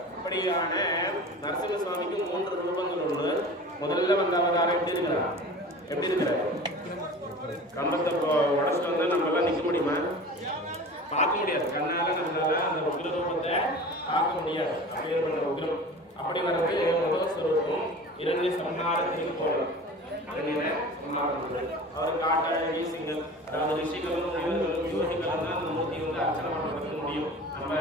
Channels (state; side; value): normal; both; correlation 0.38